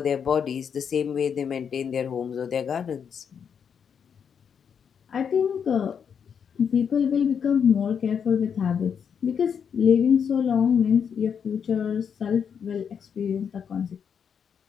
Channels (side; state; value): right; quieter; 7.3 dB